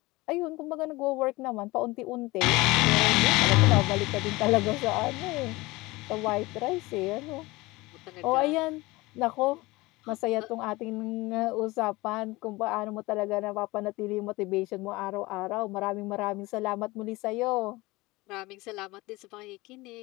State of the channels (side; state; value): right; quieter; 21.5 dB